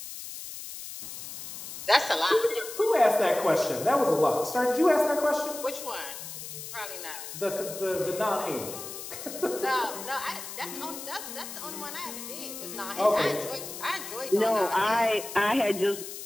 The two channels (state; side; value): noise; left; hiss, 10 dB below the sound